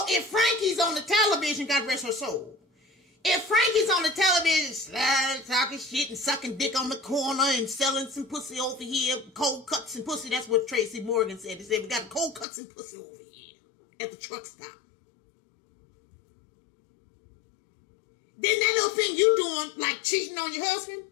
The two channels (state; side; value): drops out; right; at 12.5 s